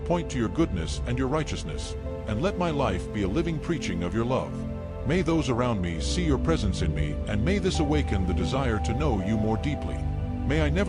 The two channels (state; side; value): identical; both; correlation 1.00